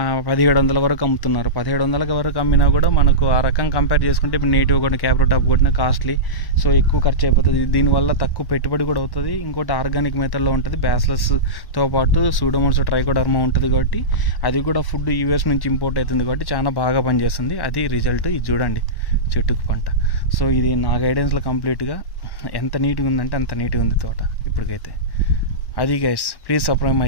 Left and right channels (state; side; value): late; right; 1.1 ms